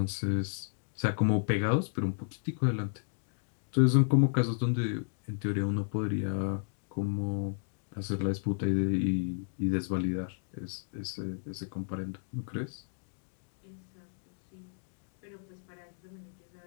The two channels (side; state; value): right; silent; digital silence